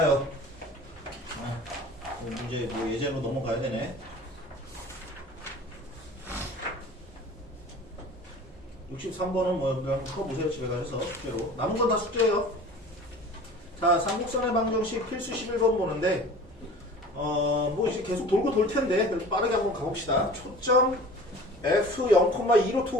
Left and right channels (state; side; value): normal; both; correlation 0.42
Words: 이제 뭐 예제로 넘어가야 되네. 63번은 뭐 그냥 풀어보세요. 집에 가셔서 숙제로. 남은 건 다 숙제예요. 자, 삼국선의 방정식 필수 11번 보는데 뭐 이제 계속 돌고 돌 텐데 그래도 빠르게 한번 가봅시다. 초점 f